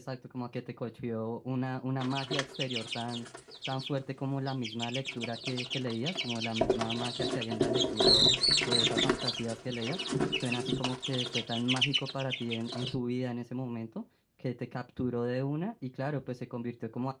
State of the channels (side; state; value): both; identical; correlation 1.00